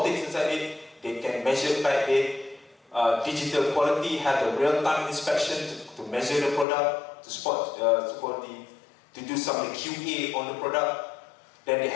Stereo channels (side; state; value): right; drops out; at 6.7 s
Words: inside it. They can measure by digital quality, have the real-time inspection to measure the product, to spot, to do some QA on the product. Then they